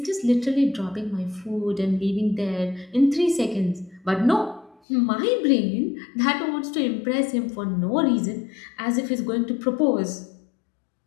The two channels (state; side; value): drops out; right; at 4.8 s